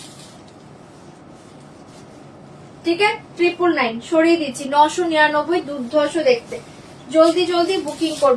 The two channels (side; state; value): both; identical; correlation 1.00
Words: ঠিক আছে 999 সরিয়ে দিচ্ছি 999 দুর্ধর্ষ দেখতে জলদি জলদি বুকিং